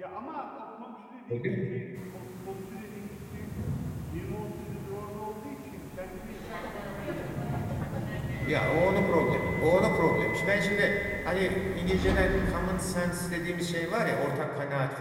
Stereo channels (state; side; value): identical; both; correlation 1.00